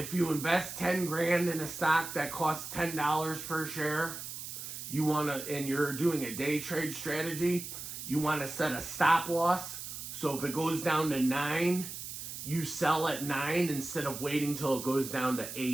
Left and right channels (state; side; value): noise; right; hiss, 8 dB below the sound